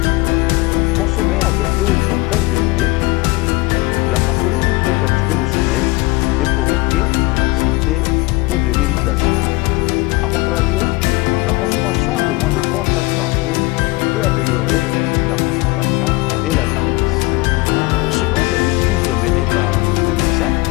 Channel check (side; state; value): right; quieter; 23.2 dB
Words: Consommée à des doses très élevées, la caféine peut perturber le sommeil et provoquer de l'anxiété ou de l'irritation. A contrario, la consommation de moins de 3 tasses par jour peut améliorer la concentration et la vigilance. Selon des études menées par des médecins,